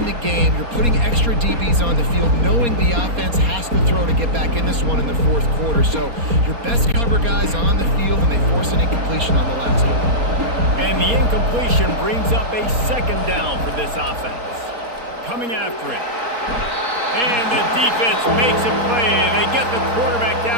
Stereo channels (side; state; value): left; late; 4.2 ms